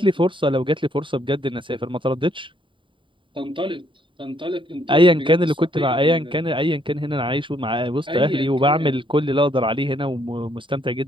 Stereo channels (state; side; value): late; left; 0.24 ms